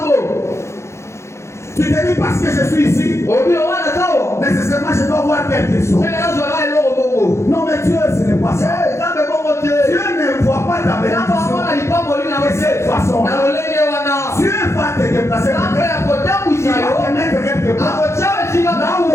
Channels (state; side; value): late; right; 0.13 ms